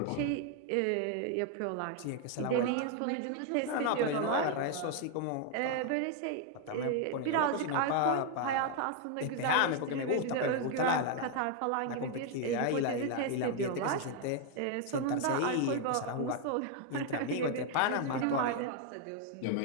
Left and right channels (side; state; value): both; different; correlation 0.00